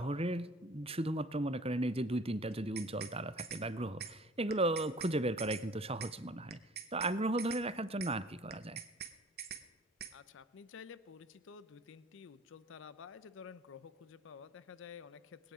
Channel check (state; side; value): normal; both; correlation 0.50